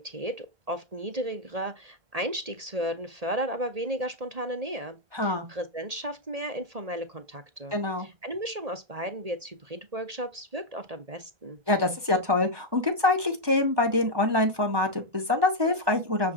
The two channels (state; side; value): late; left; 1.2 ms